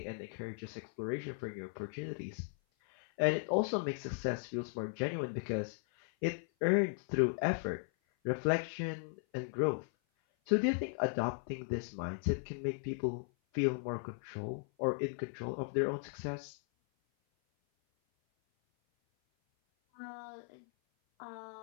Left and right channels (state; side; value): silent; right; 53 dB below the other